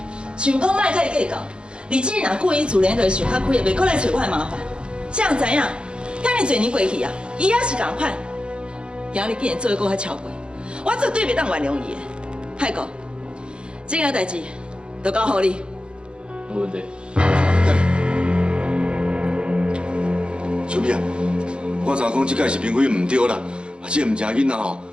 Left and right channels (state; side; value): late; left; 0.054 ms